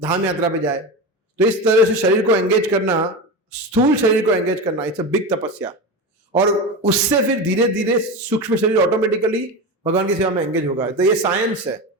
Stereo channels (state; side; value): normal; both; correlation 0.22